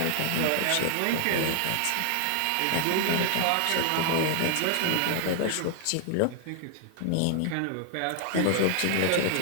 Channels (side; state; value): both; different; correlation 0.00